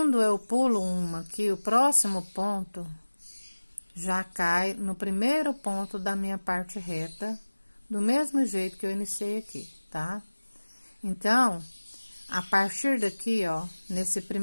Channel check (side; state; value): both; inverted; correlation -1.00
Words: eu pulo uma aqui, o próximo ponto já cai no primeiro ponto da minha parte reta, do mesmo jeito que eu iniciei aqui, tá? Então, a partir daqui, ó, nesse